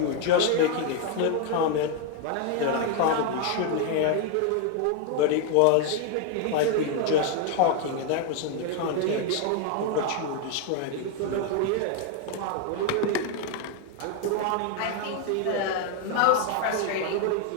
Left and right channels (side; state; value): both; different; correlation 0.01